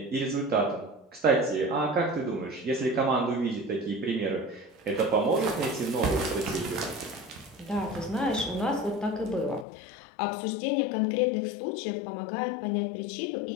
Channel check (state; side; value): drops out; right; at 9.7 s